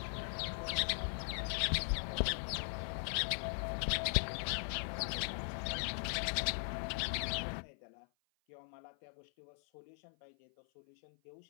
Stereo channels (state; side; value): silent; right; 51 dB below the other